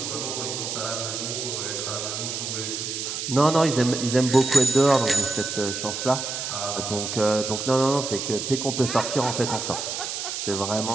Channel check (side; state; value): right; noise; hiss, 4 dB below the sound